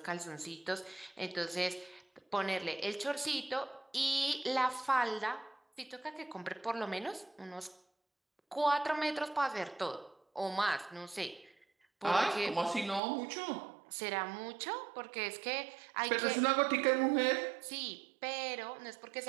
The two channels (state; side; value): drops out; left; at 13.0 s